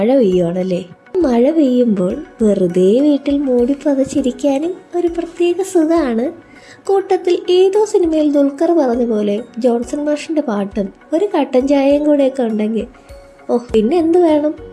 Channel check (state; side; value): identical; both; correlation 1.00